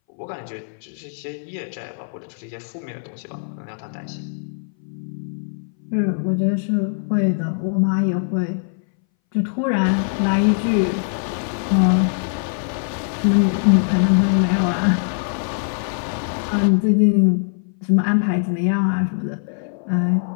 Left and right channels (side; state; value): right; silent; 62 dB below the other